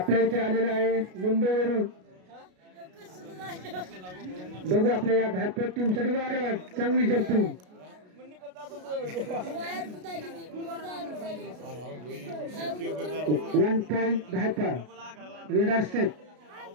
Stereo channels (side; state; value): left; late; 33 ms